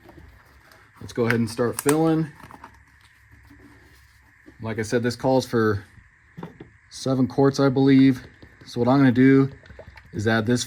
Let's go ahead and start filling. Like I said, this calls for 7 quarts, I believe. So what I'm going to do is add this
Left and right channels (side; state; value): both; identical; correlation 1.00